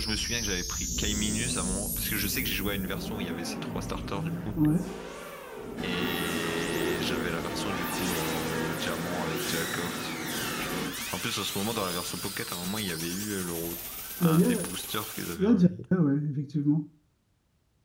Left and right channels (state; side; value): identical; both; correlation 1.00